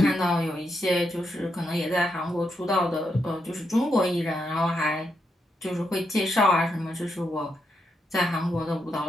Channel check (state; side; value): normal; both; correlation 0.82